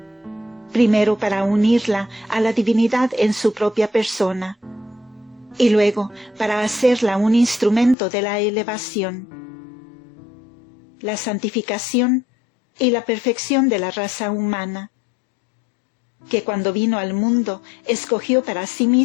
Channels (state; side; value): drops out; right; at 8.0 s